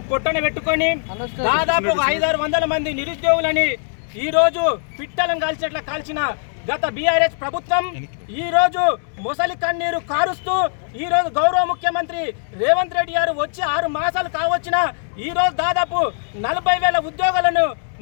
పొట్టన పెట్టుకొని దాదాపు 500-600 మంది నిరుద్యోగులని ఈ రోజు పిట్టలను కాల్చేట్లా కాల్చిన గత బీఆర్ఎస్ ప్రభుత్వం ఈ రోజు మొసలి కన్నీరు కారుస్తూ ఈ రోజు గౌరవ ముఖ్యమంత్రి రేవంత్ రెడ్డి గారు వచ్చి 6 మాసాలు కావచ్చిన ఈ రోజు దాదాపు 40,000 ఉద్యోగాలను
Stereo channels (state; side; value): silent; right; 65 dB below the other